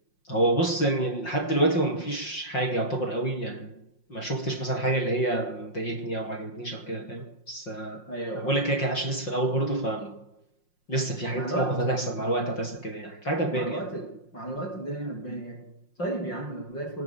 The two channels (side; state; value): right; late; 5.6 ms